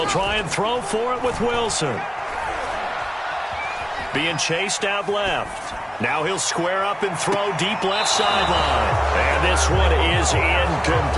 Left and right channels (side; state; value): both; identical; correlation 1.00